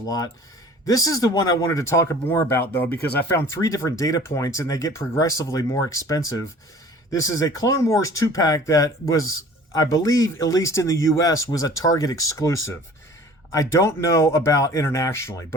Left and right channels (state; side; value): normal; both; correlation 0.47